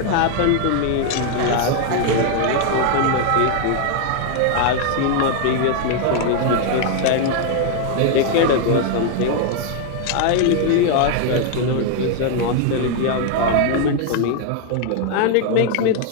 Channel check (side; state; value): both; different; correlation 0.00